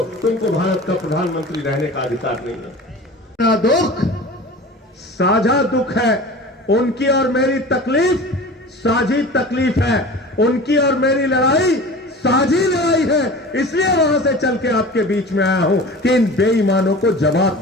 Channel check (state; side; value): normal; both; correlation 0.37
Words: तुमको भारत का प्रधानमंत्री रहने का अधिकार नहीं है। दुख साझा दुख है, उनकी और मेरी तकलीफ साझी तकलीफ है, उनकी और मेरी लड़ाई साझी लड़ाई है। इसलिए वहां से चल के आपके बीच में आया हूं कि इन बेईमानों को जवाब